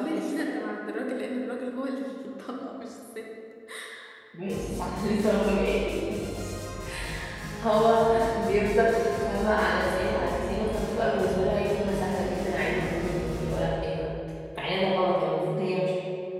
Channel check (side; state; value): both; identical; correlation 1.00